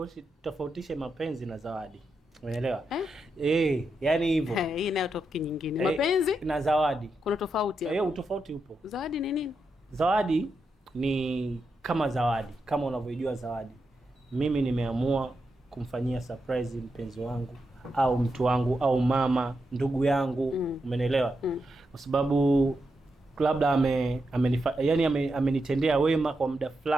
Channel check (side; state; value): both; normal; correlation 0.86